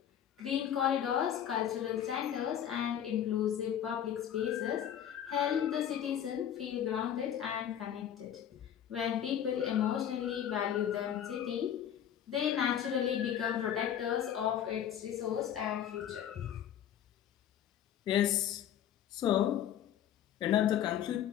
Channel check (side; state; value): right; quieter; 9.9 dB